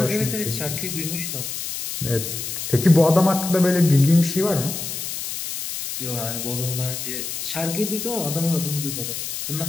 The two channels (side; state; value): left; noise; hiss, 5 dB below the sound